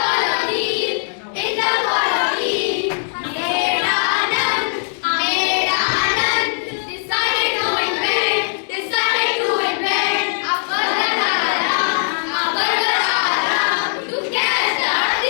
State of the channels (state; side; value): silent; right; digital silence